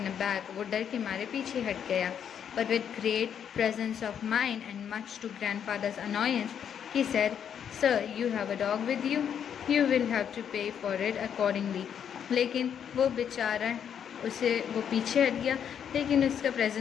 aback, वो डर के मारे पीछे हट गया। But with great presence of mind and much to grandfather's annoyance, he said, "Sir, you have a dog with you. You will have to pay for it accordingly." लेकिन वो बेचारा वो पीछे हट गया, लेकिन उसका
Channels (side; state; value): right; quieter; 8.4 dB